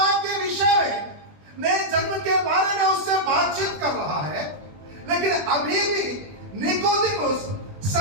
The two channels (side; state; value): left; late; 20 ms